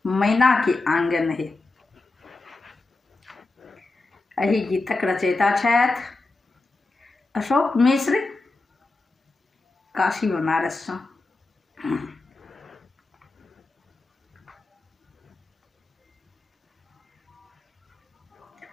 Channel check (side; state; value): right; quieter; 3.3 dB